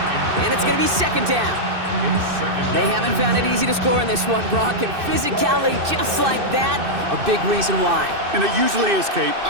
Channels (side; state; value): left; late; 2.6 ms